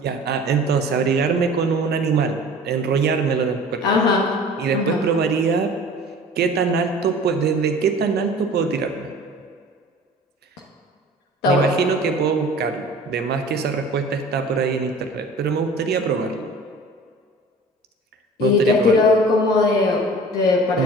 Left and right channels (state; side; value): normal; both; correlation 0.44